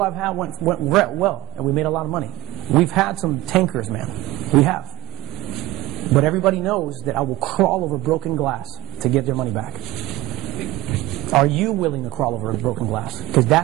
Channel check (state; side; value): quieter; left; 18.8 dB